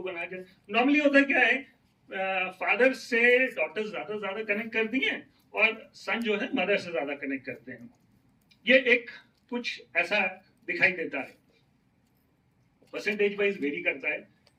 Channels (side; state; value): both; identical; correlation 1.00